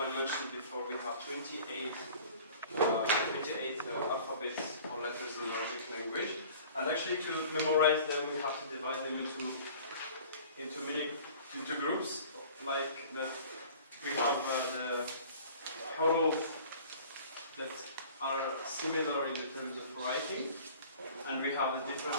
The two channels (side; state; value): both; inverted; correlation -0.46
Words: before, we have 28 alphabets or letters in Arabic language. And actually, to memorize them, we have to divide them into groups. Like that, we have the huruf that are similar in the terms of writing, and we have the